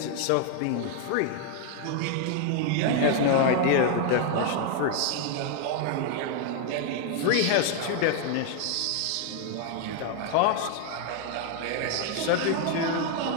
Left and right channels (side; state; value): both; different; correlation 0.00